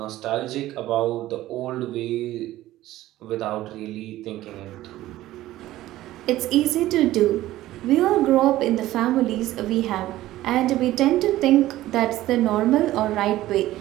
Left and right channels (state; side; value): quieter; left; 15.4 dB